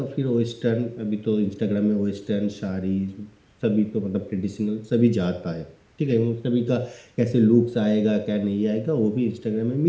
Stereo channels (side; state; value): both; identical; correlation 1.00